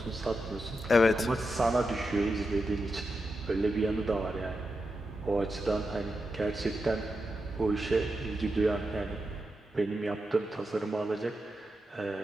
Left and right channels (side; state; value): both; normal; correlation 0.88